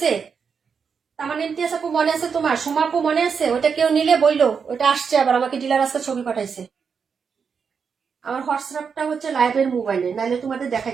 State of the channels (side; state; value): left; quieter; 6.1 dB